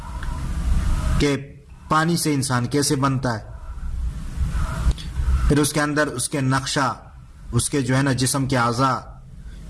کہ پانی سے انسان کیسے بنتا ہے، پھر اس کے اندر اس کے نقشہ، اس کے جو ہے نا جسم کے اعضاء،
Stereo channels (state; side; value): identical; both; correlation 1.00